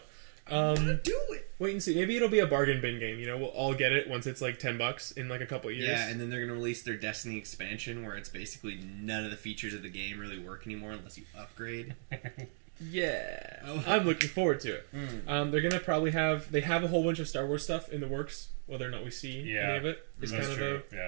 I want to do it. Wait and see. Maybe it'll be a bargain bin game. We'll all get it once it's $10 in a couple of years. Yeah, and then they're going to release their Destiny expansion where it's basically none of the features of the game really work anymore unless you upgrade. Yeah. I'm looking forward to it. They're going to probably they have a whole bunch of Star Wars stuff in the works. Whether or not we see any of it is that's kind true.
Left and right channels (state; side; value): silent; left; 54 dB below the other